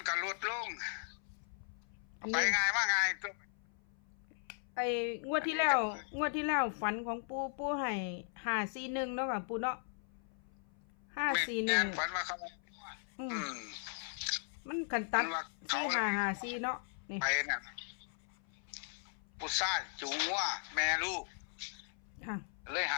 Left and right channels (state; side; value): silent; right; 53 dB below the other